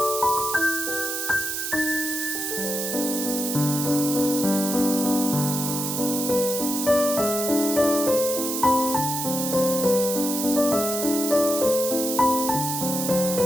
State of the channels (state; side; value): noise; right; hiss, 3 dB below the sound